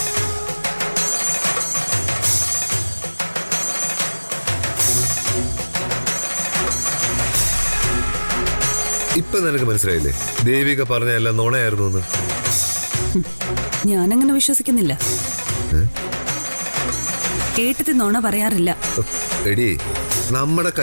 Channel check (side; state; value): both; inverted; correlation -1.00